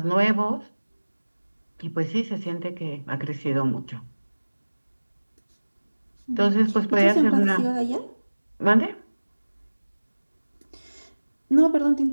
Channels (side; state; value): both; inverted; correlation -1.00